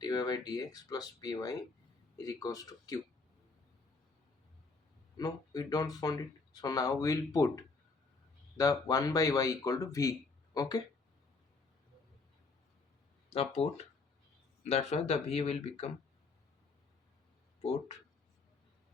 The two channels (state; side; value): quieter; right; 4.0 dB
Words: by dx plus py is equals to q. No, we don't found it, so now we'll put the 1 by y equal to v. Okay, now put, that's why the v will become, put